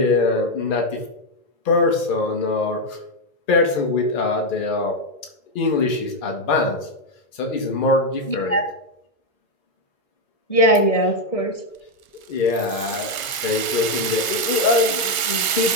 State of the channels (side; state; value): right; late; 1.4 ms